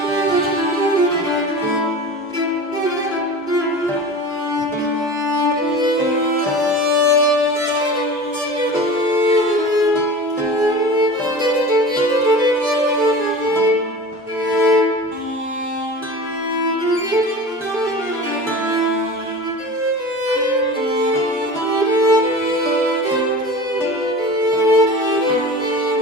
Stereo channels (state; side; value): normal; both; correlation 0.35